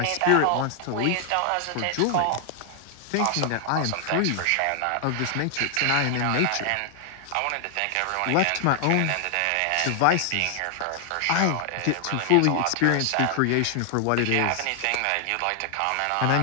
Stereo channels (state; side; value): different; both; correlation 0.00